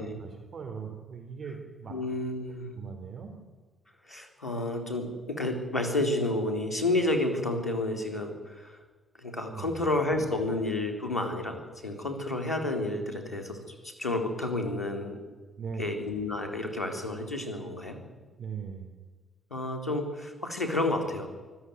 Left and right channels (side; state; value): both; normal; correlation 0.34